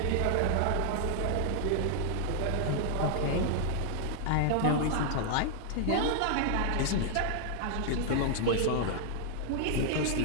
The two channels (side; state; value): both; different; correlation 0.00